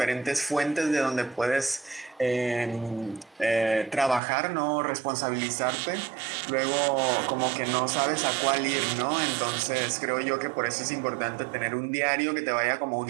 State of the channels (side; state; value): left; drops out; at 4.2 s